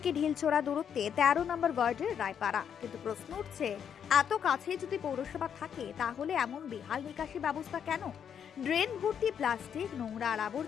ঢিলছোড়া দূরত্বে 13 নম্বর ওয়ার্ডের রায়পাড়া। কিন্তু প্রশ্ন উঠছে, এত কাছে যদি পৌরসভা থাকে তাহলে এমন বেহাল নিকাশি ব্যবস্থা কেন? ড্রেন ভর্তি প্লাস্টিক, নোংরা আর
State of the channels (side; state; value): right; quieter; 8.1 dB